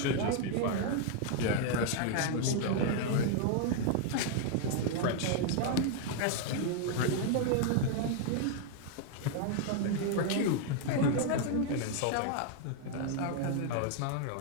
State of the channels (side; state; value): both; different; correlation 0.00